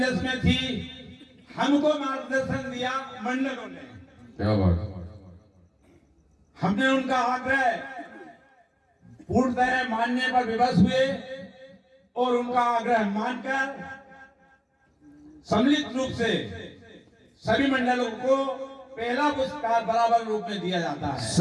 में थी, हमको मार्गदर्शन दिया मंडलों ने। क्या बात, हमने उनका आग्रह पूर्णतः मानने पर विवश हुए और उनका आग्रह मानकर सम्मिलित रूप से सभी मंडलों को पहला पुरस्कार बराबर रूप में दिया जाता है।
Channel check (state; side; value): identical; both; correlation 1.00